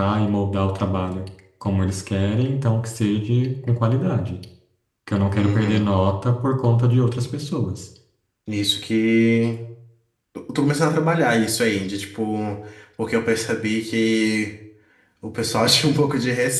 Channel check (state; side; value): identical; both; correlation 1.00